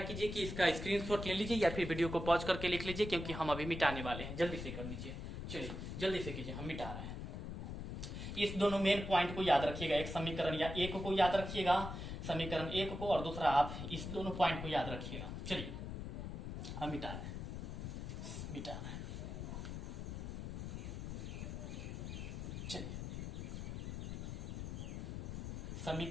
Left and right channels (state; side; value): noise; left; rumble, 6 dB below the sound